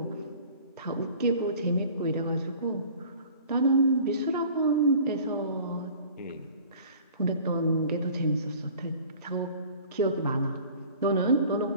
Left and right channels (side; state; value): both; inverted; correlation -0.47